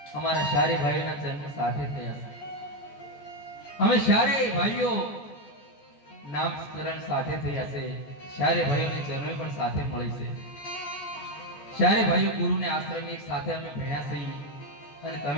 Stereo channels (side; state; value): right; late; 14 ms